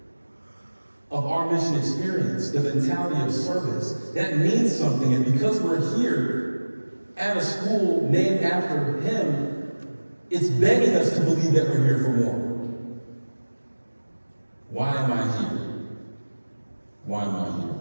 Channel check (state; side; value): inverted; both; correlation -1.00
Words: of our mission experience, the mentality of service. That means something, and because we're here at a school named after him, it's begging us to believe that we're here for more. Why am I here? Why am I here?